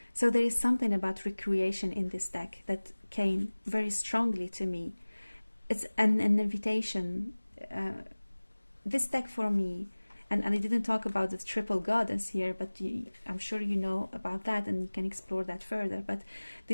So there is something about recreation in this deck that came very strongly to me. It's an invitation. This deck for me, and I didn't talk about the triple goddess here, but I'm sure you know about that and you can explore that further. But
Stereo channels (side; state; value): both; inverted; correlation -1.00